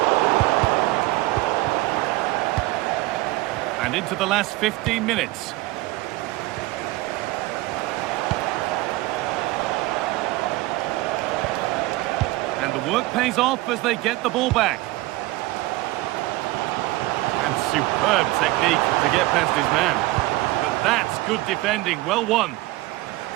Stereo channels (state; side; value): quieter; left; 19.2 dB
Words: And into the last 15 minutes. And the work pays off as they get the ball back. And superb technique to get past his man. But that's good defending, well won.